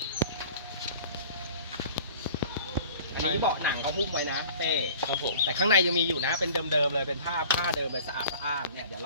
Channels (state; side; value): inverted; both; correlation -0.45